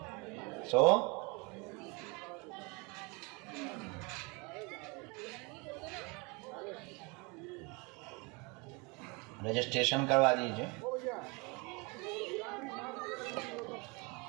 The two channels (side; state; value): left; quieter; 28.9 dB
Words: सो रजिस्ट्रेशन करवा दीजिए।